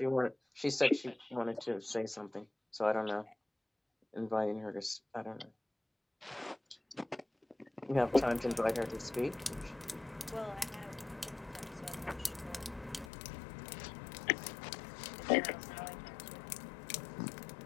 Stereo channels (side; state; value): right; drops out; at 13.1 s